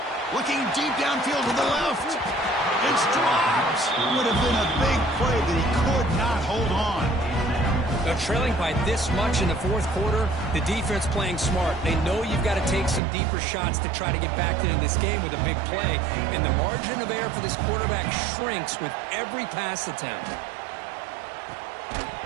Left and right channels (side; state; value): left; drops out; at 13.0 s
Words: Looking deep downfield to the left. It's dropped. Would have been a big play, but he could not hold on. Now, trailing by this much in the fourth quarter, the defense playing smart. They know you've got to take some deeper shots to try to get back into this game with a big play. And the margin of error for this quarterback shrinks with every pass attempt.